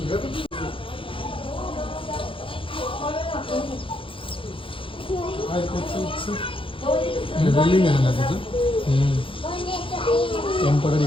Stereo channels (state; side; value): late; right; 0.25 ms